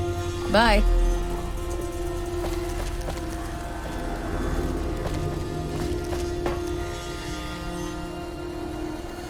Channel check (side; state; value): both; identical; correlation 1.00